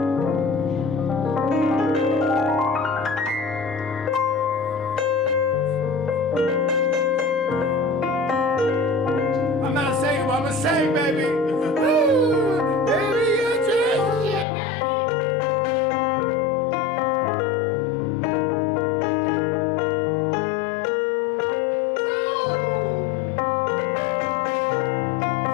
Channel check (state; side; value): drops out; right; at 14.5 s